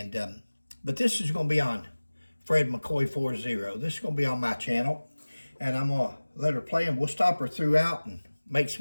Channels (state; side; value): inverted; both; correlation -1.00